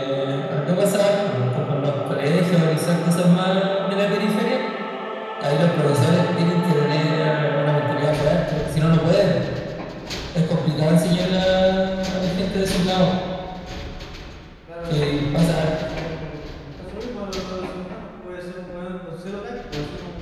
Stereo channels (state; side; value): identical; both; correlation 1.00